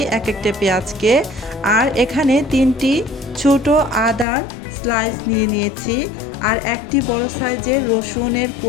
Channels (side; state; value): right; drops out; at 4.2 s